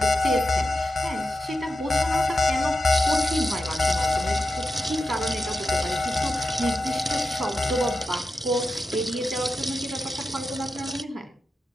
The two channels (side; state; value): both; normal; correlation 0.90